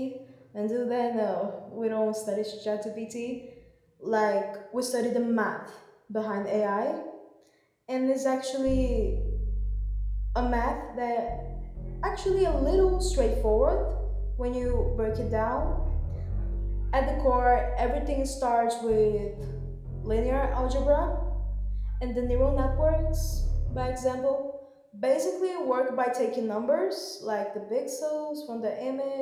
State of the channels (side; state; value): both; identical; correlation 1.00